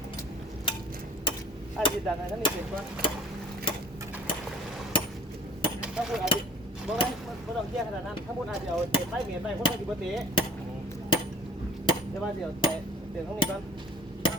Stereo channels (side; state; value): both; normal; correlation 0.48